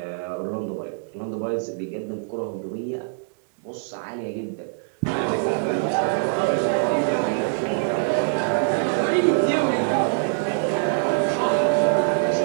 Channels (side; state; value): left; silent; digital silence